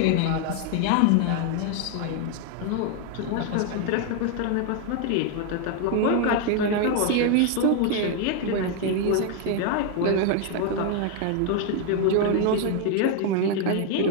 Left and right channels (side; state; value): both; different; correlation 0.00